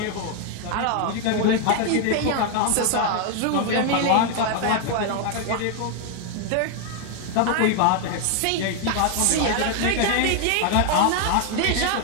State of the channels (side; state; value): both; different; correlation 0.00